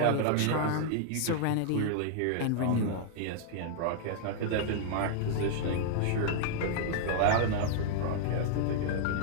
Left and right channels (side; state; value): both; different; correlation -0.01